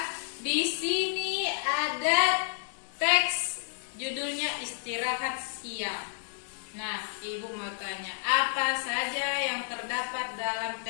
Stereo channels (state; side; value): silent; right; digital silence